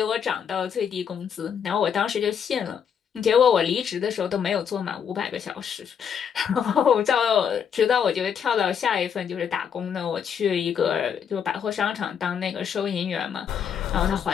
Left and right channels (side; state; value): right; quieter; 7.7 dB